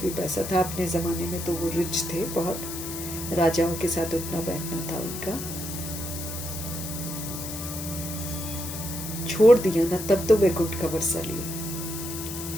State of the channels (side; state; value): left; noise; hiss, 8 dB below the sound